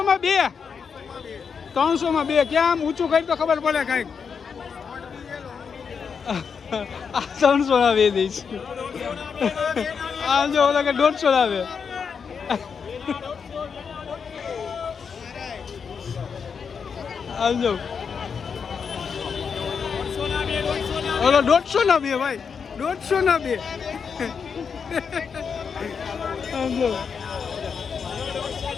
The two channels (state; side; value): quieter; right; 6.2 dB